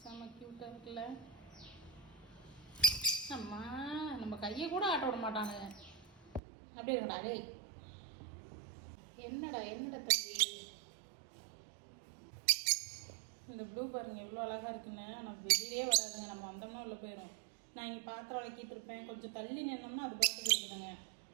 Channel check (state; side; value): drops out; left; at 6.4 s